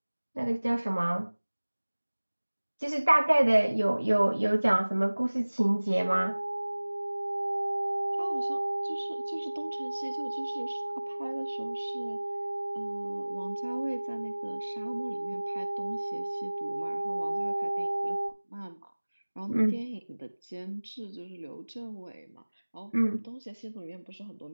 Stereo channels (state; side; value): inverted; both; correlation -1.00